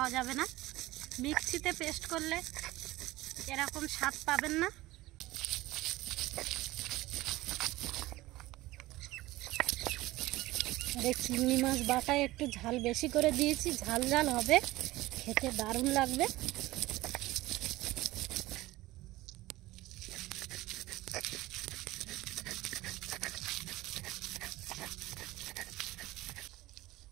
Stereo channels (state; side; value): quieter; left; 18.3 dB